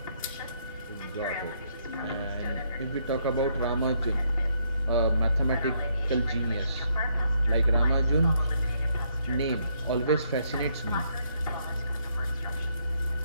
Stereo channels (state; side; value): inverted; both; correlation -0.73